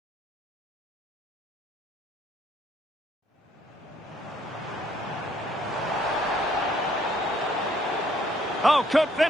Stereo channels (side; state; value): both; normal; correlation 0.66